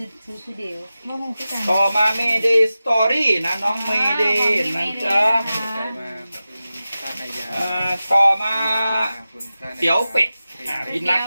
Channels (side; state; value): both; inverted; correlation -0.94